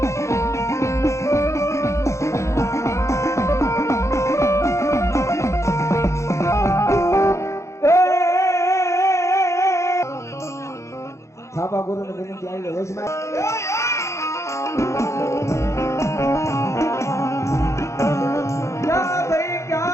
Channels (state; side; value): late; right; 0.14 ms